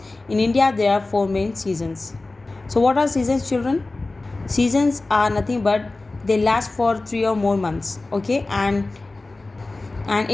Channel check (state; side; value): quieter; right; 3.2 dB